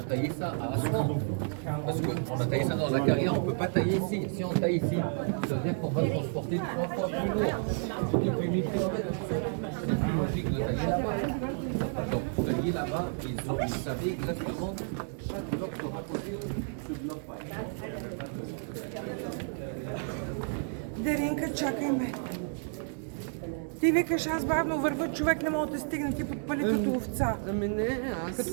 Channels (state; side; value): silent; left; 57 dB below the other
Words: taillé ça à Aswan. Parce qu'on a taillé ça dans la carrière, on ne peut pas tailler ici. Si on taille ici, ça veut dire qu'on va transporter 3 fois plus lourd. Depuis 1000 km. C'est plus logique de tailler là-bas. Donc, tailler là-bas, ils savaient exactement chaque bloc sera posé ce bloc pas. Даринка, чакай ме. Ти викаш, аз бавно вървя, човек не може да стигне, ти подпали като овца. Ами не, аз... Като